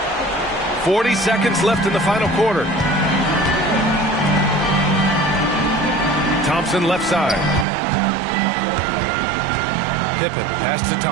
40 seconds left in the final quarter. Thompson left side. Pippen pass to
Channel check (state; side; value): drops out; left; at 7.7 s